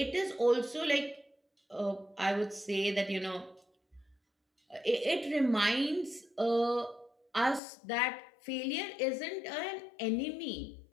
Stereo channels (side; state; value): right; drops out; at 7.6 s